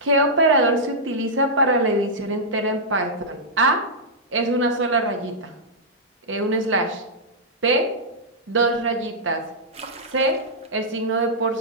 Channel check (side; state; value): both; normal; correlation -0.10